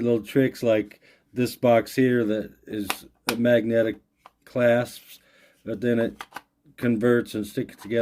little tricks like this box here that is a magnetic clasps, but then it converts and sticks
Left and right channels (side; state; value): both; identical; correlation 1.00